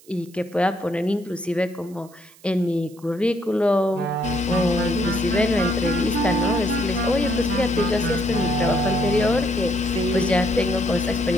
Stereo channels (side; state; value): right; noise; hiss, 26 dB below the sound